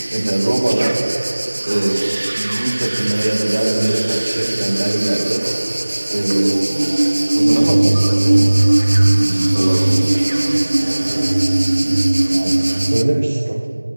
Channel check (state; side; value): inverted; both; correlation -1.00